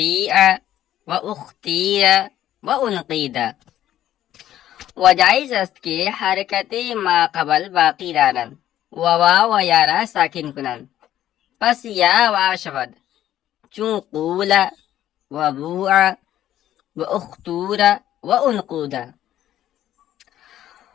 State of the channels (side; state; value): right; quieter; 12.3 dB